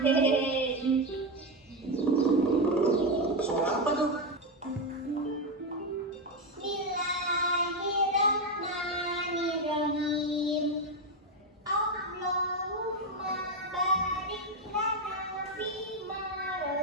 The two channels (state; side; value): normal; both; correlation 0.10